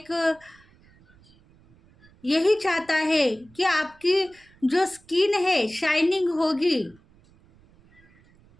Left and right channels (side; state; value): right; noise; rumble, 29 dB below the sound